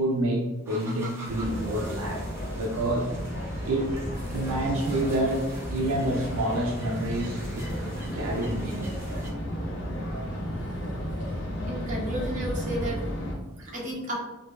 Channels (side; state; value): both; normal; correlation 0.47